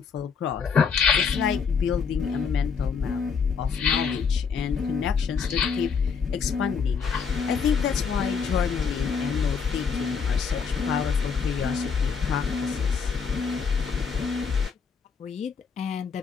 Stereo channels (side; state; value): right; quieter; 6.0 dB